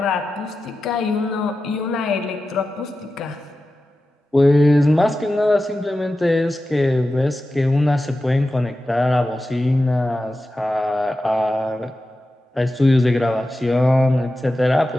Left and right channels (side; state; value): both; normal; correlation 0.93